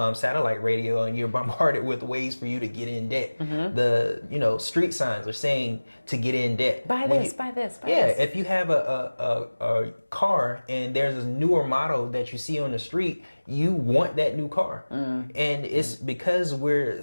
satellite radio, and you're bombarded with ways for you to get in debt. The, street signs are saying to get in debt. Buy this. Yeah, if you have a car and there's a newer model that you see on the street, you want that new car. And it's because we're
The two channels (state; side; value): inverted; both; correlation -1.00